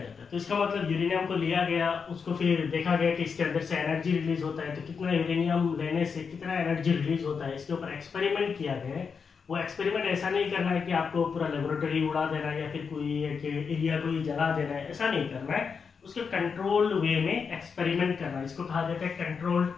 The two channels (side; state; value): right; quieter; 5.8 dB